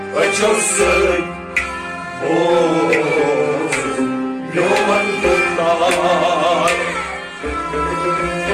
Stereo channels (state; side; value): identical; both; correlation 1.00